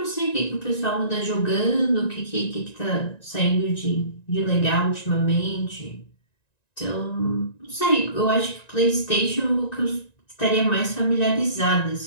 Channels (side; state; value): right; late; 1.9 ms